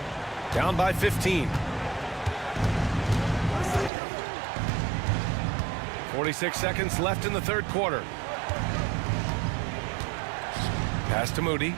Down by 15. 46 seconds left in the 3rd quarter. Pass to Moody.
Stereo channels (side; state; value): left; drops out; at 3.9 s